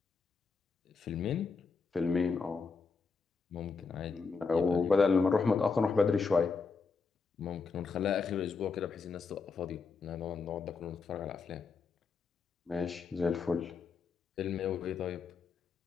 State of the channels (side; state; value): right; quieter; 4.8 dB